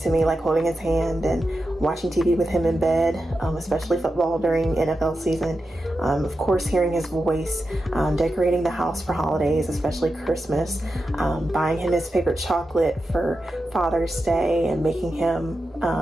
me, like holding his hand and watching TV with him in bed, especially football during NFL season. Of course, hearing his voice, decorating the house for holidays, especially Christmas, buying him his favorite chocolate for Father's Day, and making him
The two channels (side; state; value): both; normal; correlation 0.90